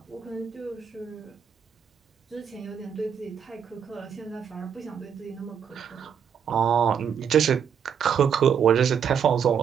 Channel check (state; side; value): quieter; left; 7.7 dB